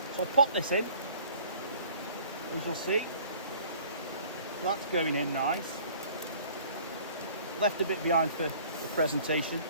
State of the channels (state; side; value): inverted; both; correlation -0.51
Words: So I'll pop this in, as you'll see. So that's going in nice. Left a bit behind for the presentation,